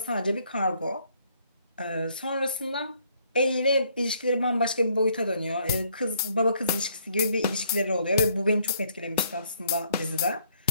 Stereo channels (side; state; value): both; inverted; correlation -0.67